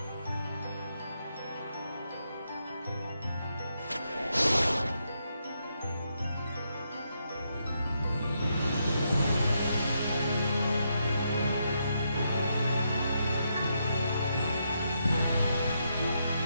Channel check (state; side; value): inverted; both; correlation -0.80